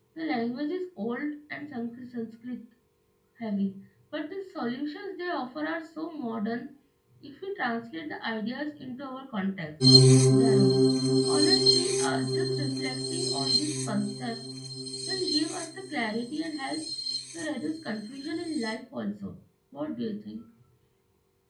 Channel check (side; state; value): both; identical; correlation 1.00